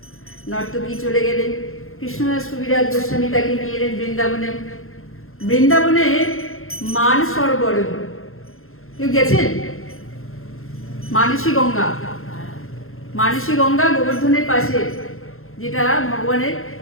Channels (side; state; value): right; late; 0.61 ms